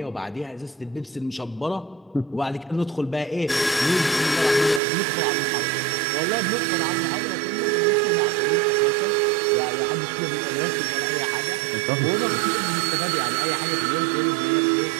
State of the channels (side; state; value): left; drops out; at 4.8 s